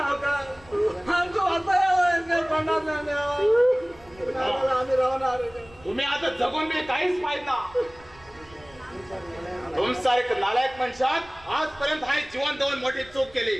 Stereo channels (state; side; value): noise; right; rumble, 25 dB below the sound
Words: आमचं आम्ही राहणार तुम्ही आता जगून मी काहीच पाहिजे ना तुमसारख नालायक मनुष्यात आजपर्यंत हा जीवन देऊन मोठी चूक केली